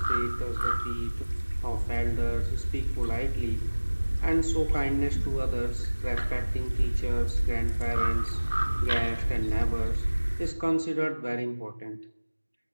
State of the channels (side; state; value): both; inverted; correlation -1.00